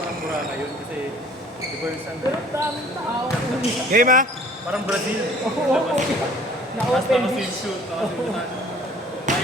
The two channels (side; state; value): both; normal; correlation 0.51